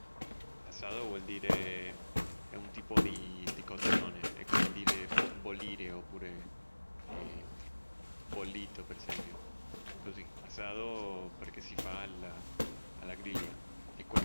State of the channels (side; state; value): both; inverted; correlation -1.00